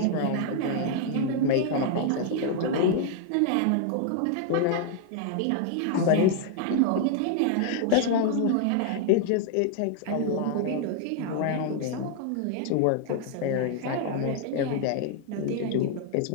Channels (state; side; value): different; both; correlation 0.00